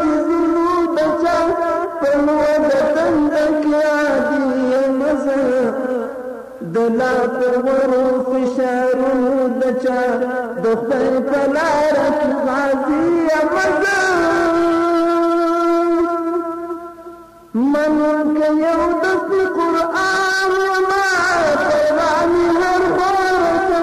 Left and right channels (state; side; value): identical; both; correlation 1.00